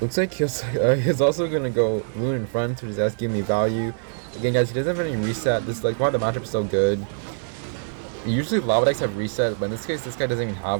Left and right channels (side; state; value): left; silent; digital silence